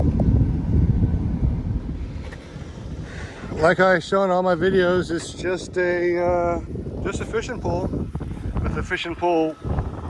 Like I show in all my videos, it's just a fishing pole with a fishing pole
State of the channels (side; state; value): both; identical; correlation 1.00